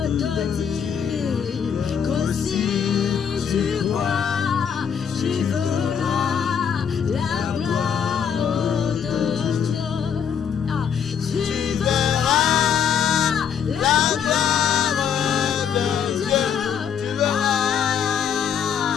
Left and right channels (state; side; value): quieter; right; 7.7 dB